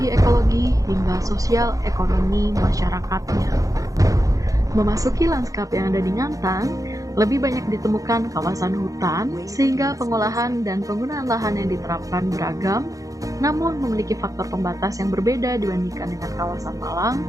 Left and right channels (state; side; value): late; left; 0.16 ms